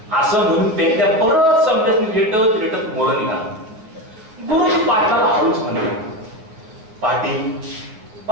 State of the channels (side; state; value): left; late; 9.3 ms